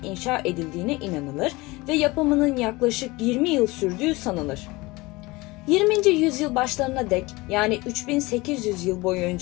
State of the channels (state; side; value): quieter; right; 22.3 dB